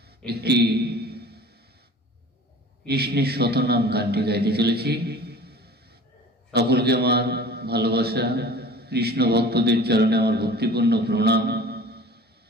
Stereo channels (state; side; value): normal; both; correlation 0.43